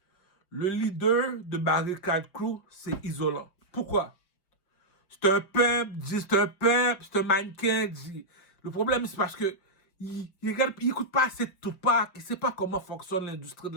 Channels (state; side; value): late; right; 5.6 ms